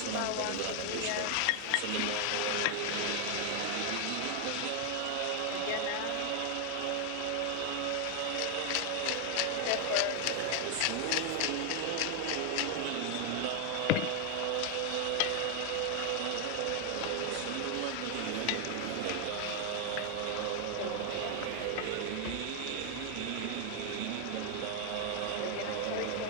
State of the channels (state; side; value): different; both; correlation 0.00